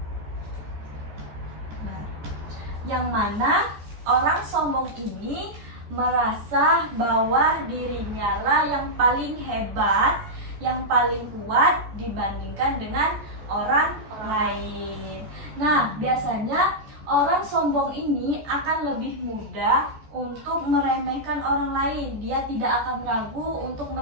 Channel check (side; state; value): left; late; 14 ms